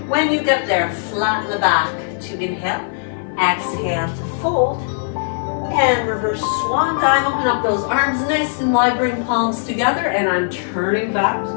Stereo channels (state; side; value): silent; right; 59 dB below the other